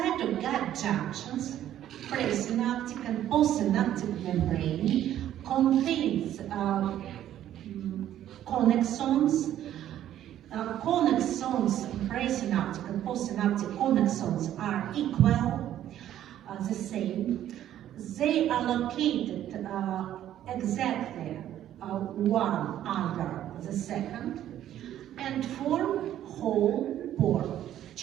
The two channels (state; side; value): quieter; left; 11.8 dB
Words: of gap junctions, presynaptic and postsynaptic membrane contains connexons. Connexons, presynaptic and postsynaptic connexons are equal, the same. They are located exactly one under the second and form whole pore,